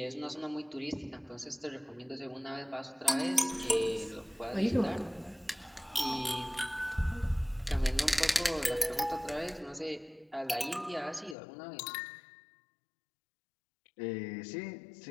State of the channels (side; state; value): right; drops out; at 11.4 s